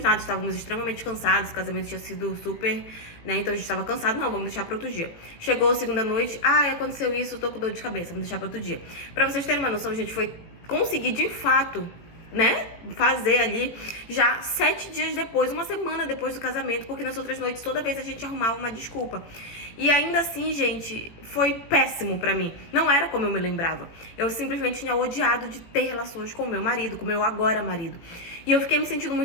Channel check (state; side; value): late; right; 18 ms